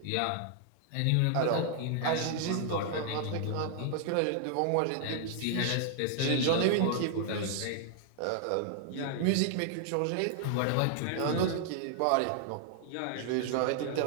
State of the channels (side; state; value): both; different; correlation 0.00